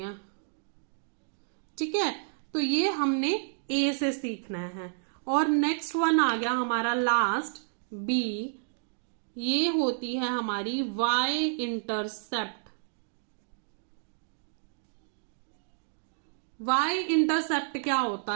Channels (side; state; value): left; silent; digital silence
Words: ठीक है। तो ये हमने ए से सीखना है। और नेक्स्ट वन आ गया हमारा लास्ट बी। ये होती है हमारी वाई इंटरसेप्ट। वाई इंटरसेप्ट क्या होता